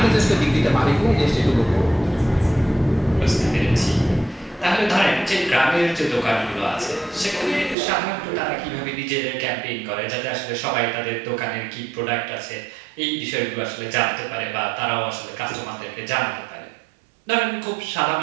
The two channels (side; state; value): left; drops out; at 7.8 s